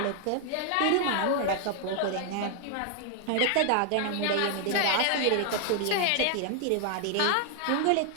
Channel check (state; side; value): different; both; correlation 0.00